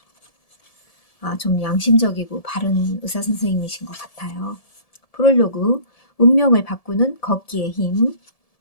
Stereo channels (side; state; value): right; late; 1.7 ms